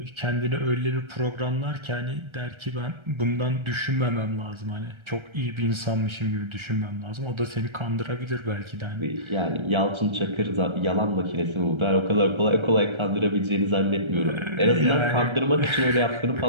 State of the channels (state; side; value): late; left; 1.3 ms